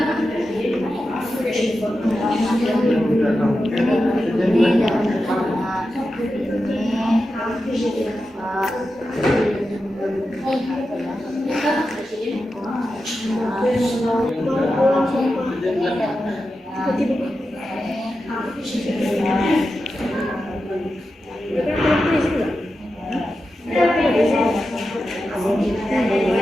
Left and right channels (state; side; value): normal; both; correlation 0.91